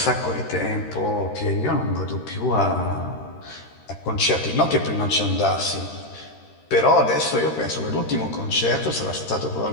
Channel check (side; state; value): right; late; 13 ms